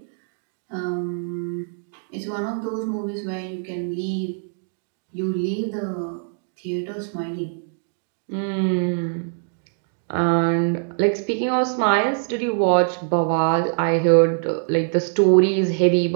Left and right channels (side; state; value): left; silent; digital silence